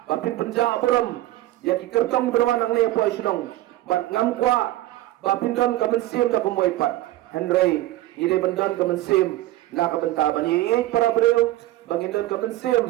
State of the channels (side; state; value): left; quieter; 16.0 dB